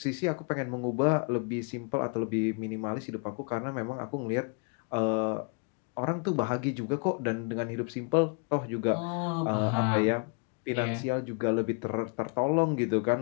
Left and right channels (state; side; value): quieter; right; 35.8 dB